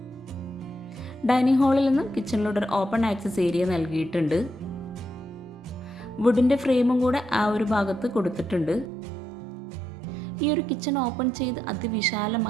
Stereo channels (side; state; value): left; drops out; at 8.9 s